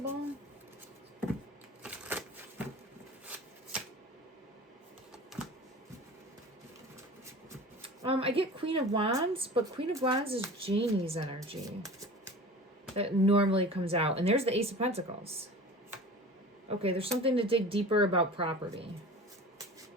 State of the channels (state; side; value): normal; both; correlation 0.38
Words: I get Queen of Wands, but Queen of Wands is Janie's energy that normally comes out. And there's the Ace of Pentacles. Okay, there's something to dig deeper about property.